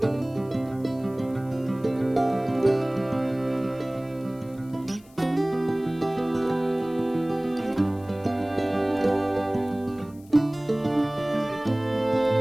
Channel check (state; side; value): noise; left; hiss, 28 dB below the sound